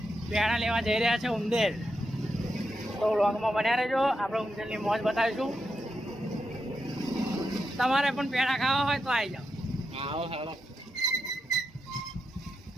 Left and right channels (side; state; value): both; normal; correlation 0.85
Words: પેડા લેવા જઈ રહ્યા છે ઉંદેર। તો વ્લોગમાં બન્યા રહેજો, આપણે ઉંદેરની મોજ બતાવીશું। તમારે પણ પેડા ખાવા હોય તો આવી જાઓ। આવો હાલો।